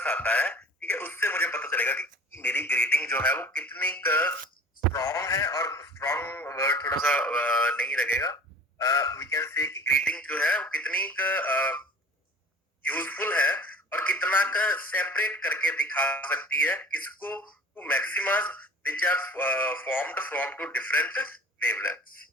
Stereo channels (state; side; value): normal; both; correlation 0.42